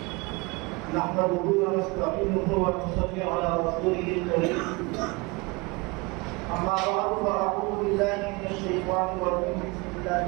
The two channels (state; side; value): quieter; left; 26.2 dB